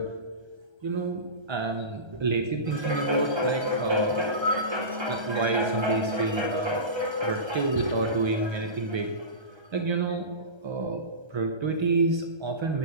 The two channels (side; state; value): left; late; 1.3 ms